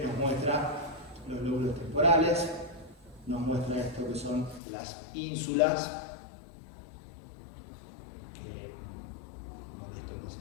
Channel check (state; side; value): drops out; right; at 4.6 s